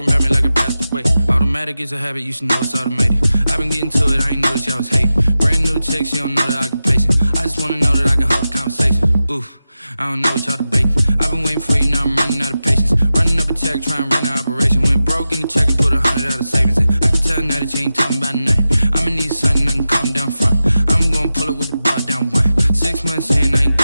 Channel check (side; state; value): both; inverted; correlation -0.93